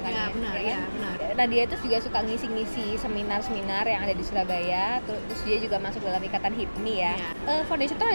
Iya, benar, kan? iya, benar. Nah dia itu juga suka ngisi-ngisi seminar-seminar yang ada di Surabaya, terus dia juga masuk dalam ikatan HIPMI ya. Iya. Foundation itu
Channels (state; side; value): inverted; both; correlation -1.00